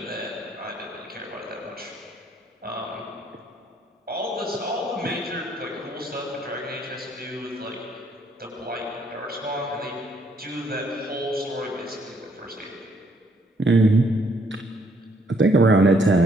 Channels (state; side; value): normal; both; correlation 0.68